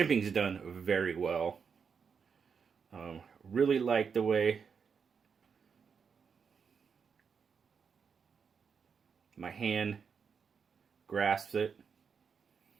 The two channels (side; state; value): left; quieter; 6.2 dB